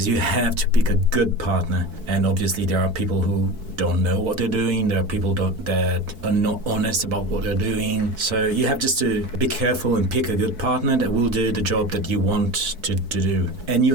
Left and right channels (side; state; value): left; late; 4.6 ms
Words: you have to pick a good partner. And obviously there are people who don't know what they're doing. There are people that are not honest about what they're doing. So you have just to be careful and pick a good partner that will do the job that you want to do. And you